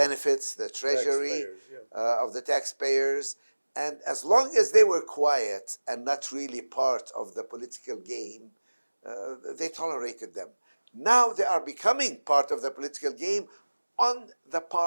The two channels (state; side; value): inverted; both; correlation -1.00